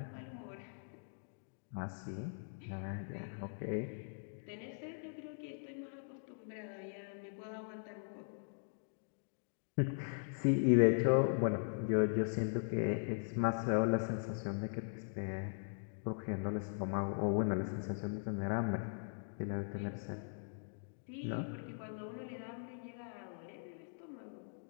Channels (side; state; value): right; silent; digital silence